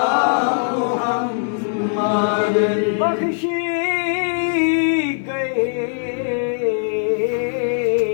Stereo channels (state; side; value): silent; right; 60 dB below the other